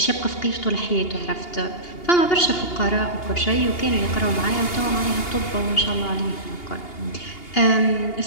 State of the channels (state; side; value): late; right; 2.8 ms